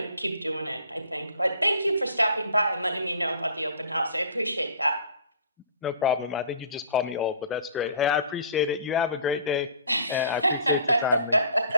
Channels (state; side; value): inverted; both; correlation -0.48